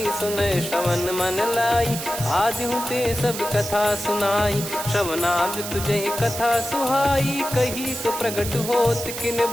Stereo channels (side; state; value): right; noise; hiss, 7 dB below the sound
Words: सुनय श्रवण मन लाई, आदिहु ते सब कथा सुनाई। श्रवणाब तुझे कथा सुहाई, कही सो प्रगट होत किन